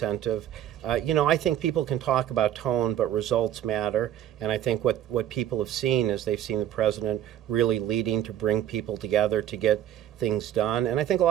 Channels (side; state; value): left; quieter; 11.5 dB